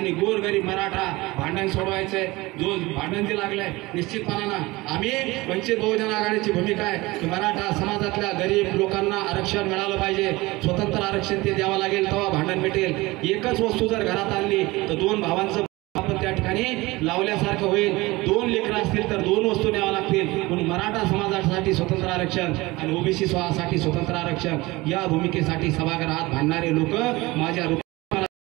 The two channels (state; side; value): quieter; left; 21.3 dB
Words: गोरगरीब मराठा भांडण सोडवायचंय. जो भांडण जे लागलंय निश्चितपणानं आम्ही वंचित बहुजन आघाडीची भूमिका आहे की मराठा समाजातल्या गरीब लोकांना आरक्षण मिळालं पाहिजे. स्वतंत्र आरक्षण ते द्यावं लागेल, तेव्हा भांडण मिटेल. एकच वस्तू जर घरात आणली तर 2 भावांचं आपण त्या ठिकाणी लावल्यासारखं होईल. 2 लेकरं असतील तर 2 वस्तू न्याव्या लागतील. म्हणून मराठा समाजासाठी स्वतंत्र आरक्षण आणि ओबीसी साठी स्वतंत्र आरक्षण या भूमिकेसाठी सभागृहात भांडणारे लोक माझ्या